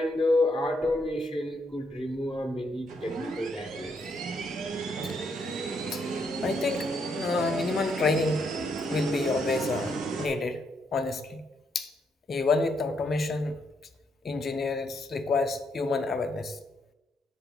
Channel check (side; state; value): both; normal; correlation 0.76